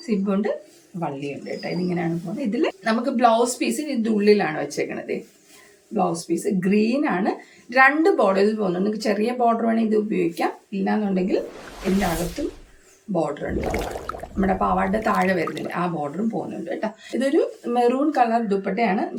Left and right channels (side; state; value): both; identical; correlation 1.00